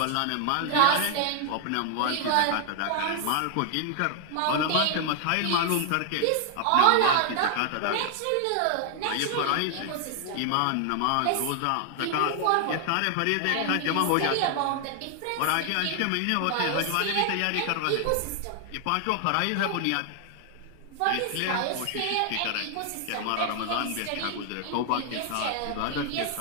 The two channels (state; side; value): different; both; correlation 0.00